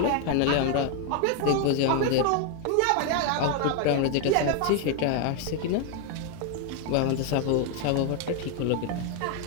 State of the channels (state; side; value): different; both; correlation 0.01